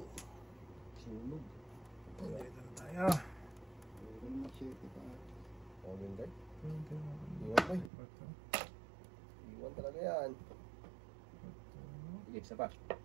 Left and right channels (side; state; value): left; drops out; at 7.9 s